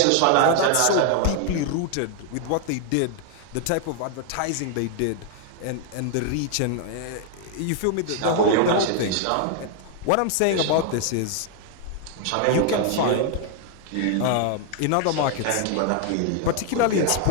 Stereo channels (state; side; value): different; both; correlation 0.00